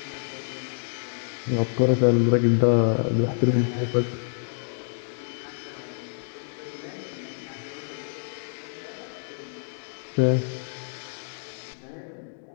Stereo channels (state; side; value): silent; right; 60 dB below the other